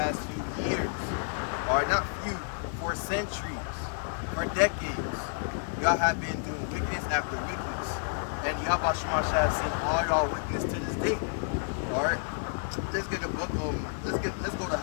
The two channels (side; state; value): right; silent; digital silence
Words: few years. Alright, not few, for centuries, for decades. Y'all have been doing wickedness after wickedness, and YAHAWASHI has seen all y'all wickedness to this day. Alright, let's get the book. Let's go to